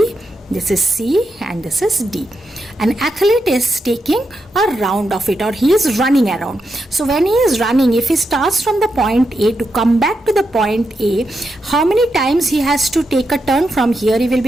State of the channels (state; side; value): normal; both; correlation 0.85